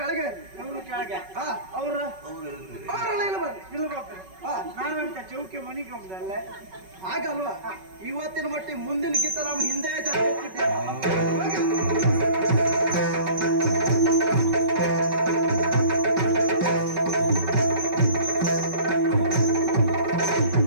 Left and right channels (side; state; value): left; late; 5.3 ms